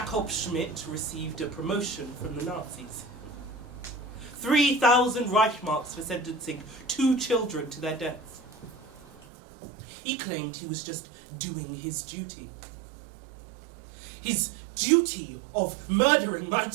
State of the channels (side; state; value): left; drops out; at 9.2 s